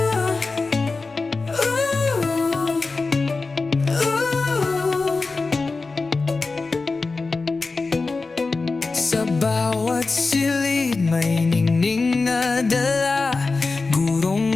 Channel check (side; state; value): right; quieter; 3.9 dB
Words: ooh, ooh. Sa bawat silid may ningning na dala,